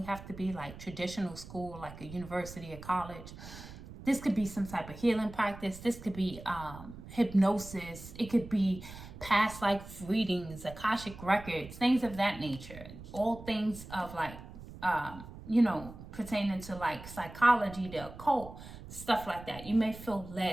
have to be like traditional school, like a university or college. This could be some type of healing practice. This could be hypnosis. It could be past life readings, Akashic records, things of that nature. All things of like, you know, pertaining to like psychology, the occult, stuff like that. You may feel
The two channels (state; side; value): noise; right; rumble, 14 dB below the sound